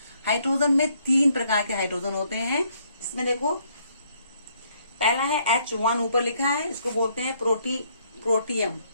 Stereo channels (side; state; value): both; inverted; correlation -0.68